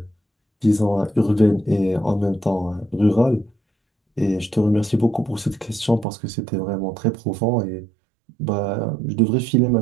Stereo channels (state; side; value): drops out; left; at 6.1 s